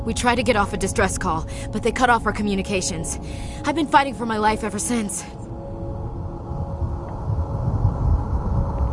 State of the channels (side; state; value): both; identical; correlation 1.00